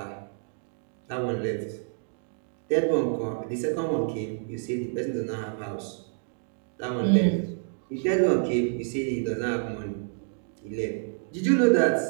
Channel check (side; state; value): left; silent; digital silence